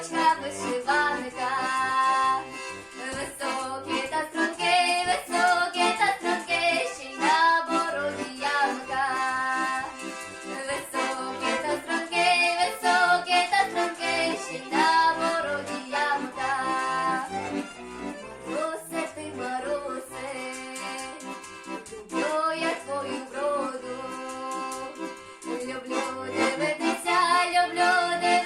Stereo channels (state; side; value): identical; both; correlation 1.00